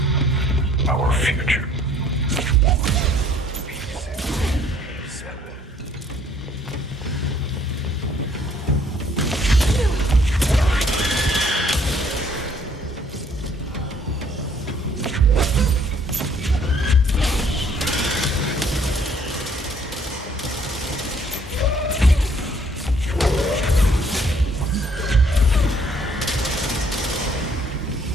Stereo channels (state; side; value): normal; both; correlation 0.61